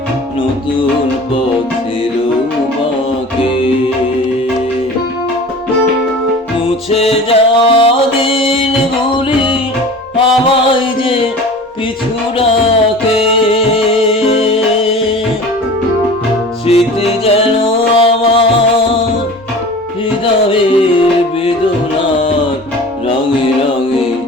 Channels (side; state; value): both; normal; correlation 0.39